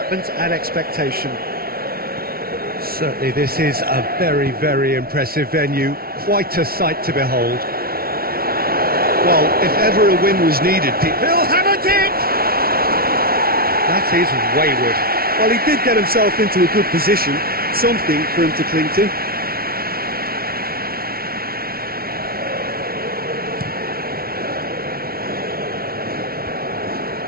and expectation. Certainly this is a very, very impressive venue. Quite a sight to behold. Well, if ever a win was needed, He'll have a dig! That is wayward. well, he did get himself into a good position, something for him to cling to.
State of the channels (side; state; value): left; late; 0.44 ms